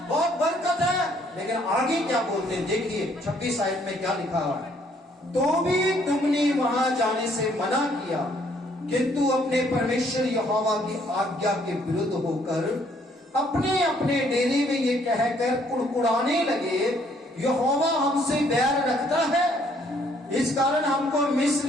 बहुत बरकत है, लेकिन आगे क्या बोलते हैं देखिए 26 आयत में क्या लिखा हुआ है। तो भी तुमने वहां जाने से मना किया, किंतु अपने परमेश्वर यहोवा की आज्ञा के विरुद्ध होकर अपने अपने डेरे में ये कहकर कुड़कुड़ाने लगे, यहोवा हमसे बैर रखता है, इस कारण हमको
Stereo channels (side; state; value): both; normal; correlation 0.65